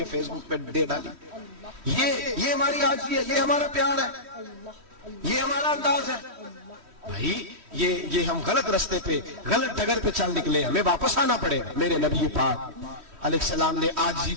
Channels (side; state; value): left; late; 3.1 ms